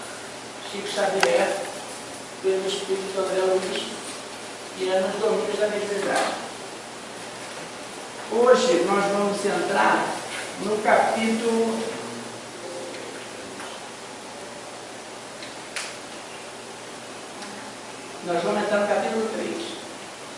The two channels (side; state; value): both; identical; correlation 1.00